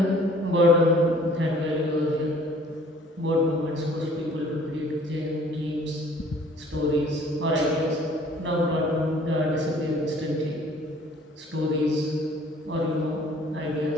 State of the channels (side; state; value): both; normal; correlation 0.54